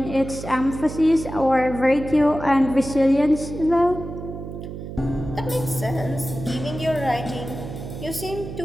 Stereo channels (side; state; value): right; noise; hum, 9 dB below the sound